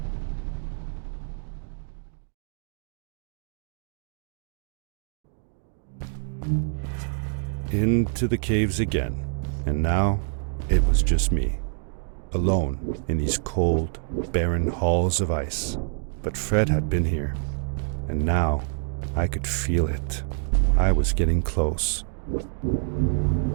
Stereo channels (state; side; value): silent; left; 58 dB below the other